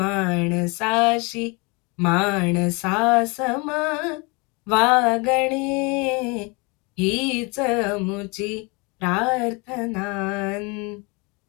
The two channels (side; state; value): right; quieter; 29.2 dB